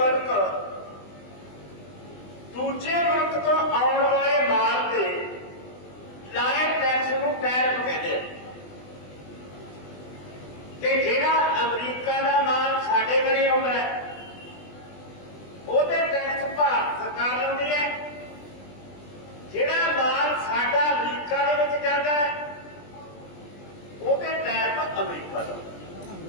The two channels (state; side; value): late; right; 20 ms